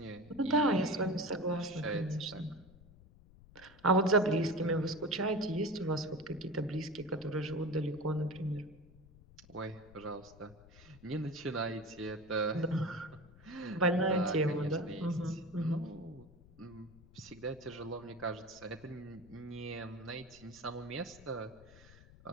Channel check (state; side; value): noise; left; rumble, 22 dB below the sound